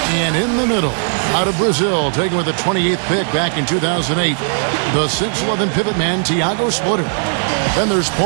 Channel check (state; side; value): silent; left; 68 dB below the other